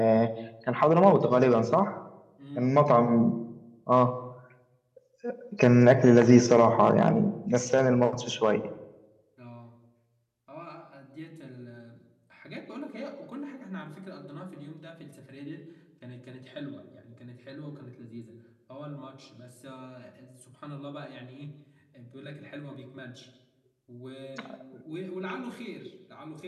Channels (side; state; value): both; identical; correlation 1.00